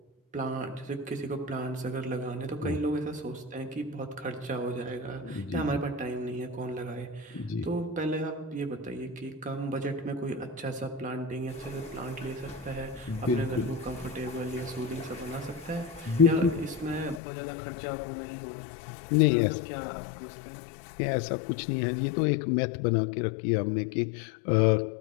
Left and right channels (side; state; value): right; drops out; at 17.2 s